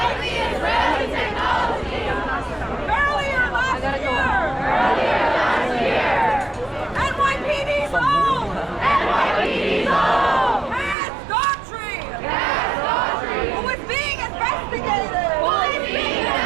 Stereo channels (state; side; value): drops out; left; at 11.0 s